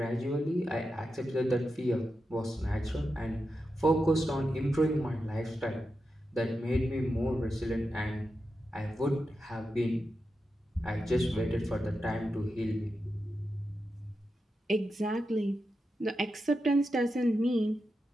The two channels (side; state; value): both; normal; correlation 0.89